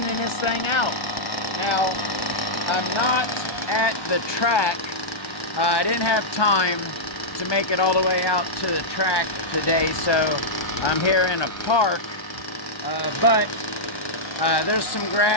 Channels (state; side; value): late; right; 1.2 ms